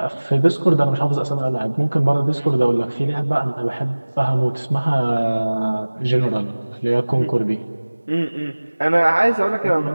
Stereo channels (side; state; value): both; inverted; correlation -1.00